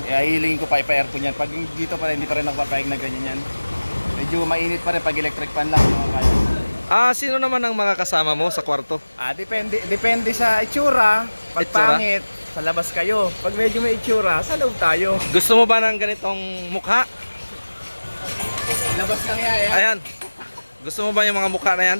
Hihilingin ko pa ipa-aircon yan. Pag dito pa rin, hindi pa rin nakapapayag na ganyan yan. Medyo mainit pa rin pag electric fan lang. Sino naman ang makakasama mo sa kwarto? Depende sa itsura. Pag Itsura? pangit, sa labas kayo. Pag medyo may itsura, sa loob tayo. Gusto mo ba ng ganitong mukha? Labas lang yan. Ayan. Gusto mo ba yung mga mukha na yan?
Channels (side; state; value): both; inverted; correlation -1.00